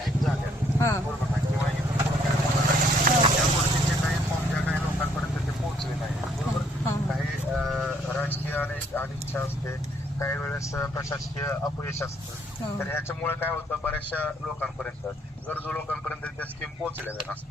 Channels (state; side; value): normal; both; correlation 0.66